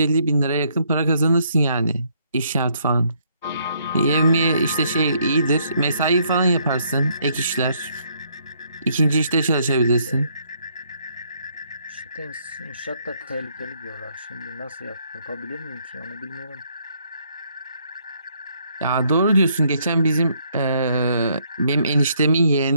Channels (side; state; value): both; inverted; correlation -0.69